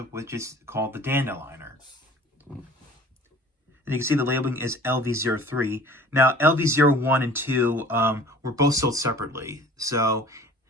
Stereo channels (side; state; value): both; normal; correlation 0.46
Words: which is called the Dandeliner. And you can see the labeling is LV03. Now, LV01 and 2 were both sold separately. So